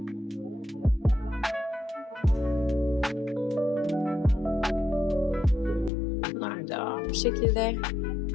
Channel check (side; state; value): right; drops out; at 5.9 s